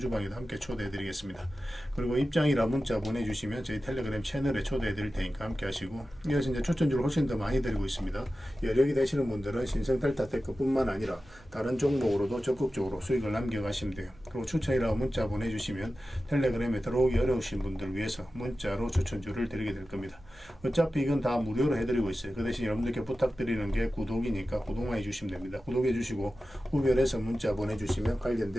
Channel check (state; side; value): noise; right; hum, 25 dB below the sound